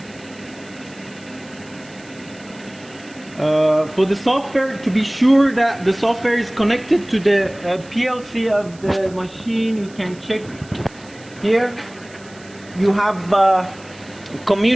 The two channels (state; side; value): noise; right; hiss, 24 dB below the sound